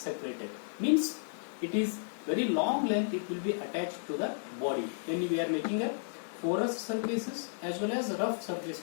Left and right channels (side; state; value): right; silent; digital silence